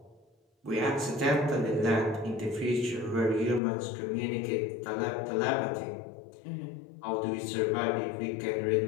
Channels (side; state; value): right; drops out; at 3.6 s